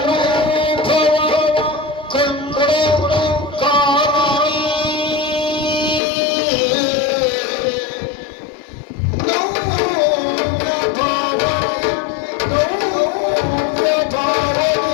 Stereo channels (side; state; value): right; drops out; at 6.0 s